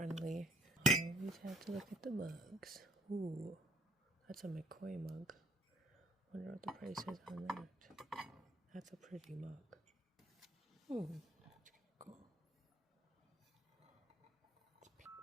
I always have to look at the mugs. Ooh, that's a McCoy mug. Wonder what the price is on that. That's a pretty mug. Ooh, that's cool.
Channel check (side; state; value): both; normal; correlation 0.64